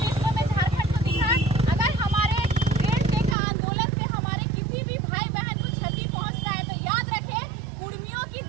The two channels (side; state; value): left; drops out; at 3.4 s